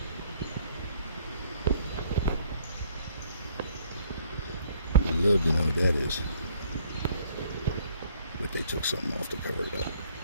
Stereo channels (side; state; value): both; inverted; correlation -0.61